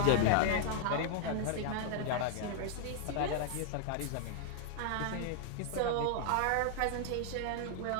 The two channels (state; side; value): different; both; correlation 0.00